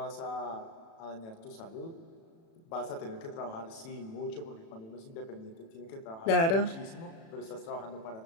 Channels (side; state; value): right; late; 36 ms